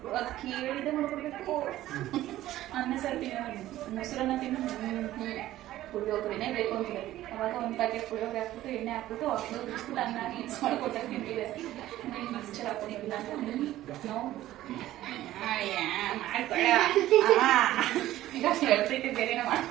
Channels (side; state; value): left; quieter; 14.5 dB